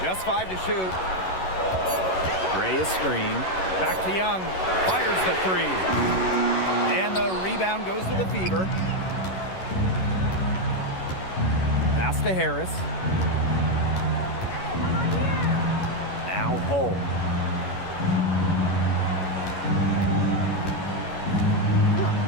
Just 5 to shoot. Gray is screened. Back to Young. Fires the 3. And the rebound goes to the Fever. Pass to Harris. Now Hull.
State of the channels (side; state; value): right; late; 11 ms